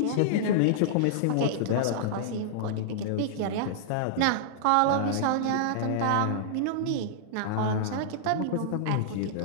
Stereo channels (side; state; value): both; different; correlation -0.02